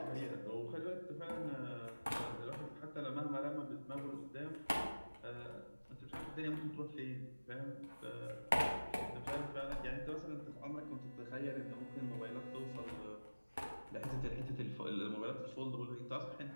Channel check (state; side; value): inverted; both; correlation -1.00